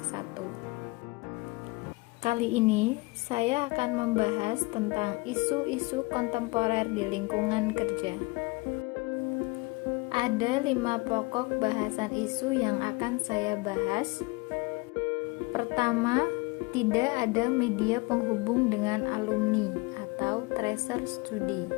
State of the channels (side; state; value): right; quieter; 25.6 dB